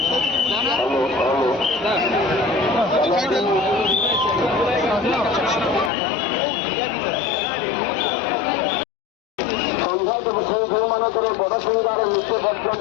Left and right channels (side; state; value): right; drops out; at 5.9 s